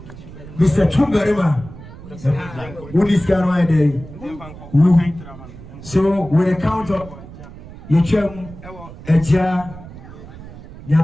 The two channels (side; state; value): right; noise; rumble, 16 dB below the sound